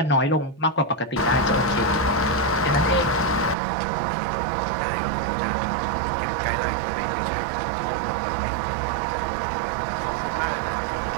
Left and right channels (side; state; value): left; drops out; at 3.6 s